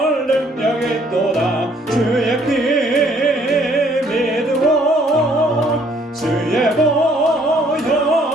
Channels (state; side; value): normal; both; correlation 0.63